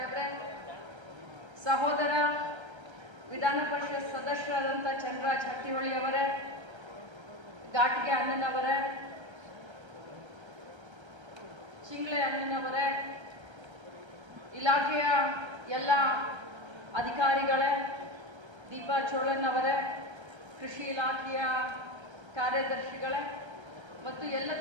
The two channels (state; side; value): late; left; 1.3 ms